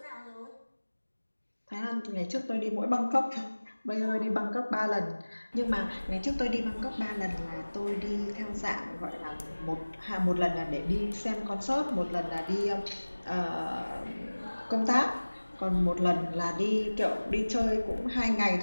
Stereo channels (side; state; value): both; inverted; correlation -1.00